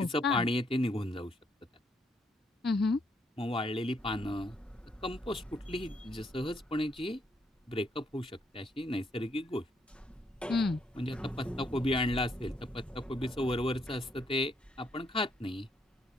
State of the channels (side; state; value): both; normal; correlation 0.73